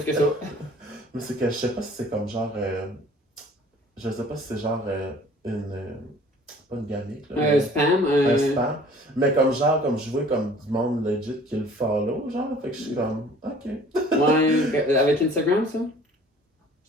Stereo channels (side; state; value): both; normal; correlation 0.51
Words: que ça. Mais c'est que je sais pas si c'est comme genre. Je sais pas si c'est genre une. Pas une gamique. Là, un spam. Un spam. Mais comme genre, comme je vois comme du monde legit qui le follow, genre. Fait que je suis comme, ok. Ouais, avec Instagram, ça?